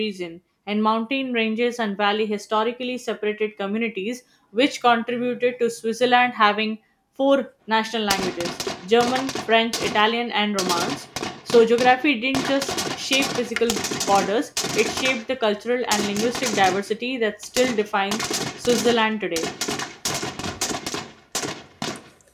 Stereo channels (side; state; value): both; identical; correlation 1.00